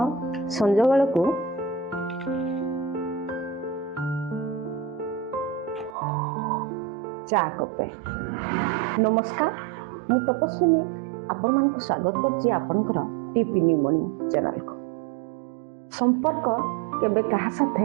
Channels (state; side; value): drops out; left; at 6.0 s